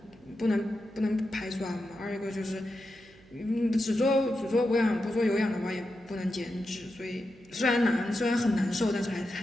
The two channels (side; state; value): right; noise; hum, 25 dB below the sound